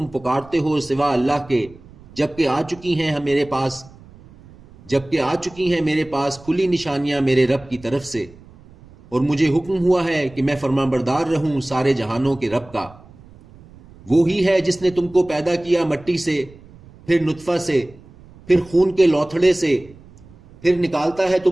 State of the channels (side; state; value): right; noise; rumble, 23 dB below the sound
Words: پکارتے ہو سوا اللہ کے، جبکہ آ چکی ہیں میرے پاس کھلی نشانیاں میرے رب کی طرف سے، اور مجھے حکم ہوا ہے کہ میں فرمانبردار رہوں سارے جہانوں کے رب کا۔ وہی ہے جس نے تم کو پیدا کیا مٹی سے، پھر نطفہ سے، پھر خون کے لوتھڑے سے، پھر نکالتا ہے